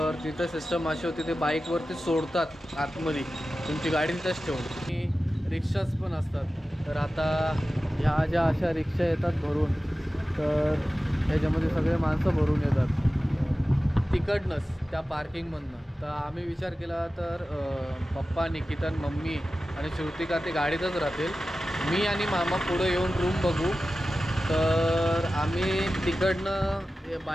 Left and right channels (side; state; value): both; normal; correlation 0.95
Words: तिथं सिस्टम अशी होती, ते बाईकवरती सोडतात आतमध्ये, तुमची गाडी तिथंच ठेवून. आणि रिक्षाच पण असतात. तर आता ह्या ज्या अशा रिक्षा येतात भरून, तर ह्याच्यामध्ये सगळे माणसं भरून येतात तिकडनंच त्या पार्किंगमधनं. तर आम्ही विचार केला तर पप्पा, निकिता, मम्मी आणि श्रुतिका ते गाडीतच राहतील, मी आणि मामा पुढे येऊन रूम बघू. तर आम्ही तिकडनं